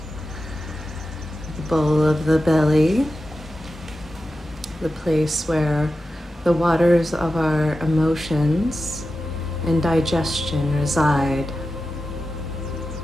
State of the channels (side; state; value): both; normal; correlation 0.92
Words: the bowl of the belly, the place where the waters of our emotions and digestion reside.